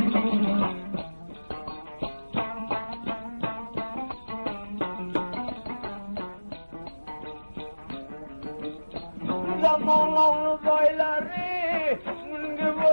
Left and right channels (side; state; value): both; inverted; correlation -1.00